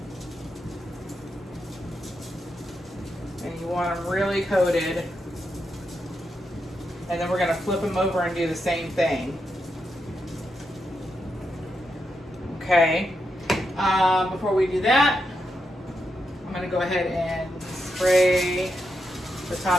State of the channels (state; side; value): normal; both; correlation 0.84